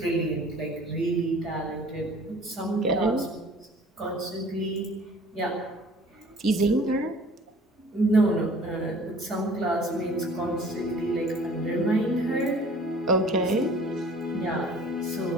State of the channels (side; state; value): both; normal; correlation 0.50